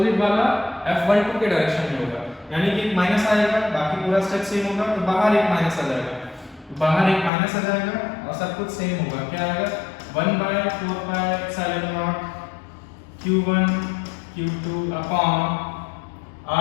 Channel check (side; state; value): right; drops out; at 7.3 s